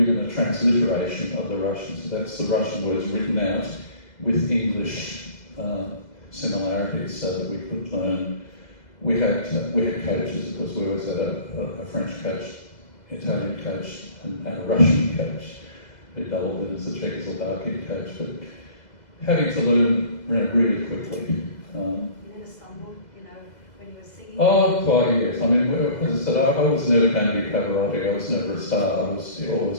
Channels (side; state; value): right; late; 2.0 ms